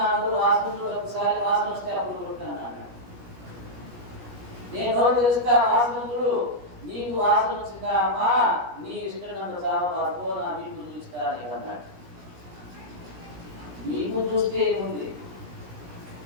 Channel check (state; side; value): late; left; 17 ms